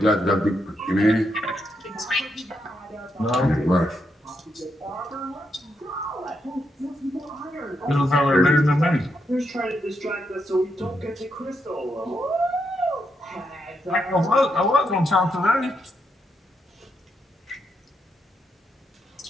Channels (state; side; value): normal; both; correlation 0.80